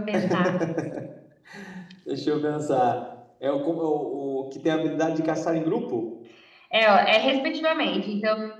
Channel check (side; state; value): both; identical; correlation 1.00